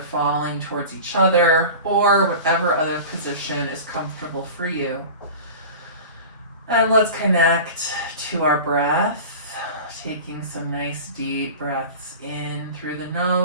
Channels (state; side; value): inverted; both; correlation -0.34